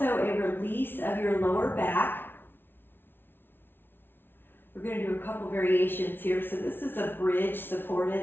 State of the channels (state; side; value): late; right; 0.10 ms